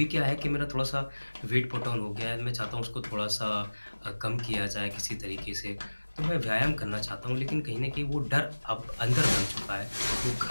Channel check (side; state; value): both; inverted; correlation -1.00